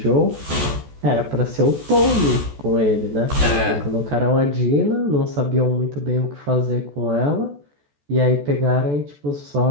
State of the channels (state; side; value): late; left; 14 ms